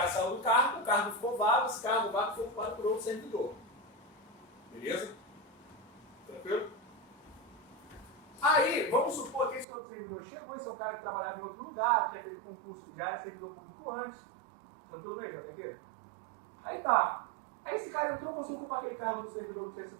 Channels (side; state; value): left; drops out; at 9.7 s